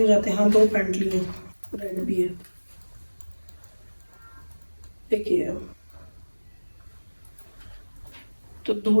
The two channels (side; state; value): both; inverted; correlation -1.00